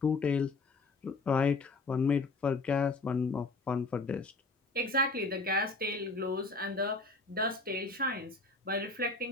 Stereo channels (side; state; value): right; quieter; 3.5 dB